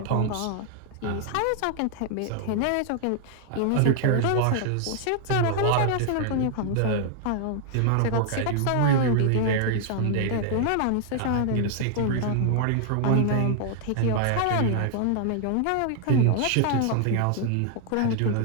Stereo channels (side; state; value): both; different; correlation 0.00